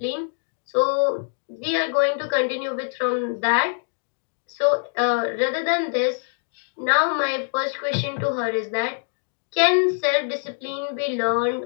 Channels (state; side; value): silent; right; 63 dB below the other